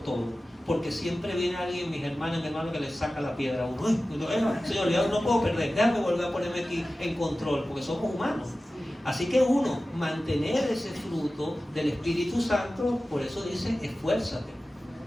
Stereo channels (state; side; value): normal; both; correlation 0.95